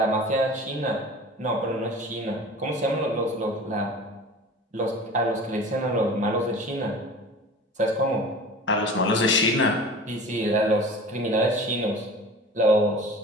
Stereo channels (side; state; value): both; normal; correlation 0.39